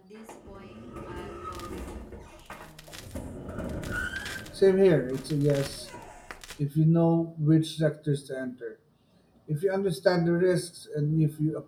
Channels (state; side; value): identical; both; correlation 1.00